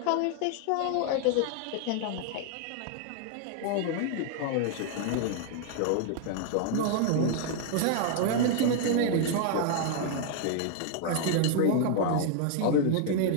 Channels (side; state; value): both; different; correlation 0.00